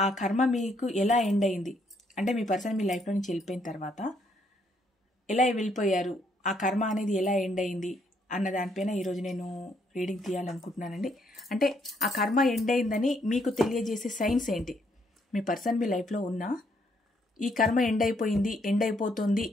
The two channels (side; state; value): both; normal; correlation 0.71